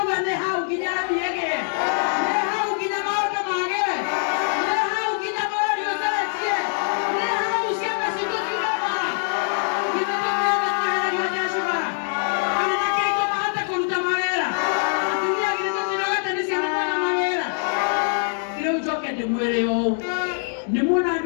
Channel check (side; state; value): right; silent; 63 dB below the other